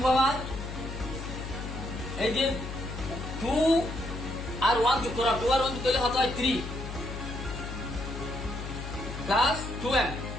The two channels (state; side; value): noise; left; hum, 8 dB below the sound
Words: পাওয়ার এই যে 2 আর 1 যোগ করা, 2 আর 1 যোগ করলে কত হয় 3 plus 2m